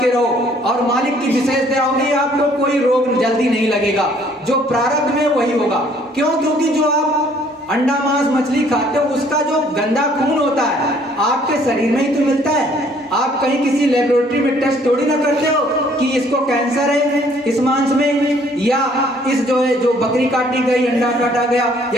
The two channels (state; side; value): normal; both; correlation 0.61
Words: रहो। और मालिक की विशेष दया होगी, आपको कोई रोग जल्दी नहीं लगेगा, जो प्रारब्ध में वही होगा। क्यों? क्योंकि जो आप अंडा मांस मछली खाते हो उसका जो गंदा खून होता है आपके शरीर में ही तो मिलता है। आप कहीं किसी लेबोरेटरी में टेस्ट थोड़ी ना करते हो कि इसको कैंसर है इस मांस में, या इस जो है जो बकरी काटी गई, अंडा काटा गया